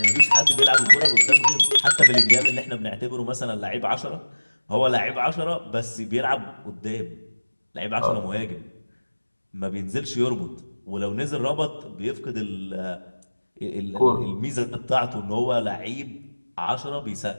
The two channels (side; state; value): both; inverted; correlation -1.00